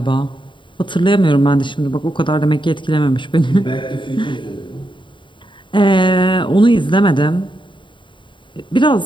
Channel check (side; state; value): right; late; 0.23 ms